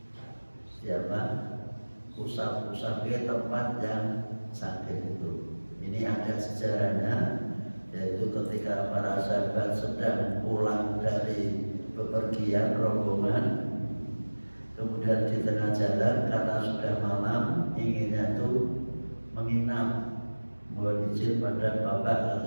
usap-usap ke tempat yang sakit itu. ini ada sejarahnya, yaitu ketika para sahabat sedang pulang dari bepergian rombongan, kemudian di tengah jalan karena sudah malam inginnya itu menginap, mohon izin pada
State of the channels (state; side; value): inverted; both; correlation -1.00